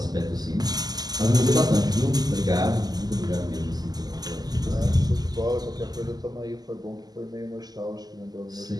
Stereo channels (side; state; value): left; late; 0.19 ms